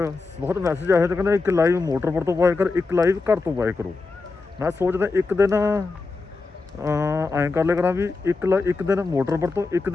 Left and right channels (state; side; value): quieter; right; 3.9 dB